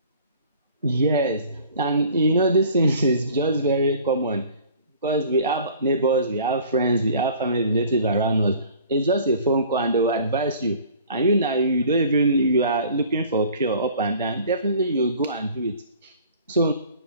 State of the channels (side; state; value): both; inverted; correlation -0.49